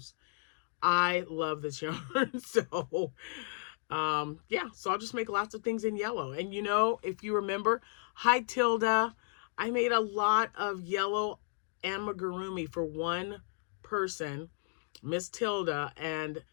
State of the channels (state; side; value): silent; right; 55 dB below the other